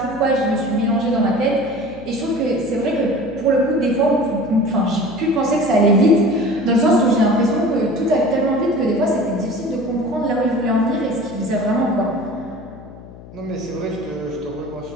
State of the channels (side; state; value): left; noise; hum, 18 dB below the sound